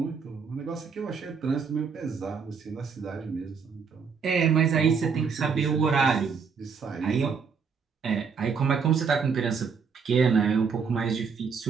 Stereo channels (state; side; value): quieter; left; 5.8 dB